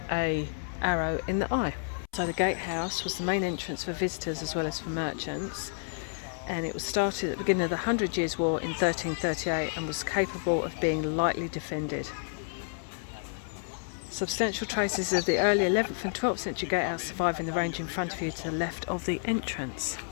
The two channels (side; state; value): right; silent; 58 dB below the other